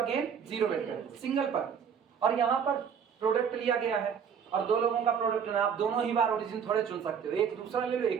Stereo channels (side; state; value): left; quieter; 7.3 dB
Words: 0 vector, single पर। और यहाँ पर प्रोडक्ट लिया गया है और दो लोगों का प्रोडक्ट है, आप दोनों ही बार ओरिजिन थोड़े चुन सकते हो, एक दूसरा ले लो,